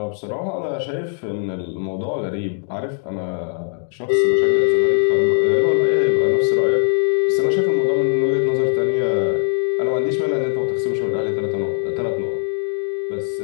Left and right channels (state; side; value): silent; right; digital silence